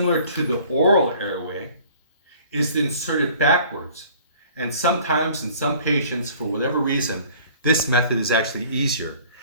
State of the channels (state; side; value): inverted; both; correlation -0.51